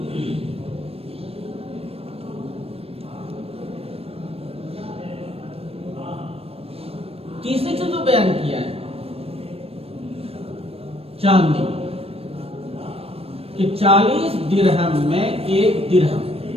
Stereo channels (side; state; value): left; late; 0.28 ms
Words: तीसरी चीज जो बयान किया है चांदी कि 40 दिरहम में 1 दिरहम,